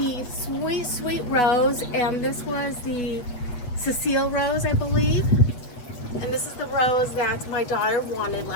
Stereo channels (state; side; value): late; right; 8.2 ms